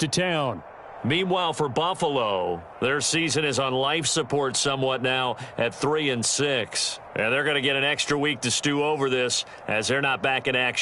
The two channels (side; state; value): both; identical; correlation 1.00